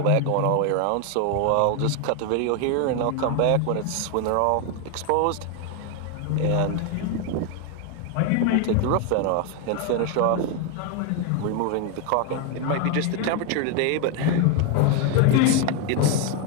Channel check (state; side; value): different; both; correlation 0.01